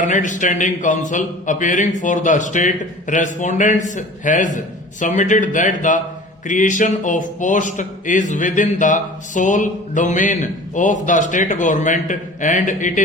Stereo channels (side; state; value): both; normal; correlation 0.42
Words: Standing Council appearing for the state respondents has submitted that the creation of post is within the sole domain of the state government and it